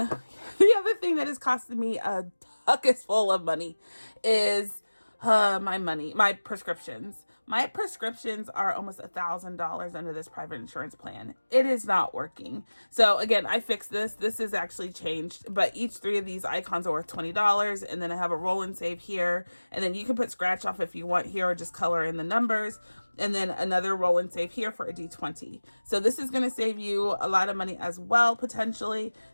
other thing that has costed me a bucket full of money is my prescriptions. My prescriptions are almost $1,000 under this private insurance plan. It is not working. So again, I fixed this. This is actually changed, but each 3 of these icons are worth $20. And then I have a roll and save here. And then you can put scratch off if you want here, or just color in the numbers. And then another roll and save here for a D20. So this is going to save you a lot of money as well, potentially.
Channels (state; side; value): inverted; both; correlation -1.00